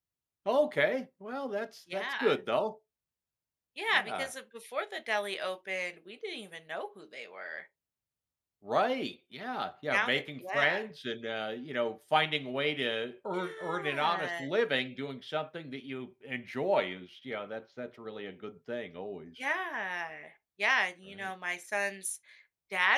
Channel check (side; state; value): both; identical; correlation 1.00